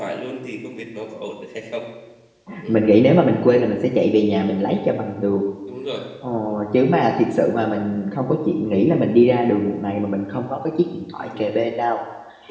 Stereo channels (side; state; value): both; identical; correlation 1.00